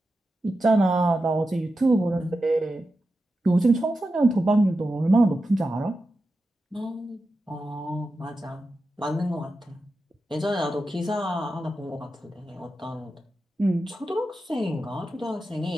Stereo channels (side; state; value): both; normal; correlation 0.90